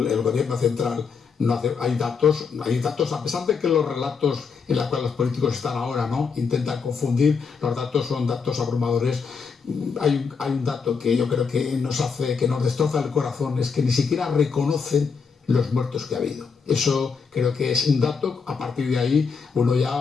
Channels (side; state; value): right; quieter; 5.6 dB